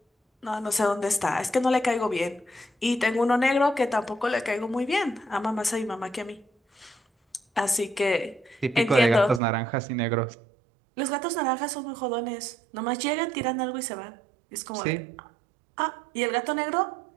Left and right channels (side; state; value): left; drops out; at 9.4 s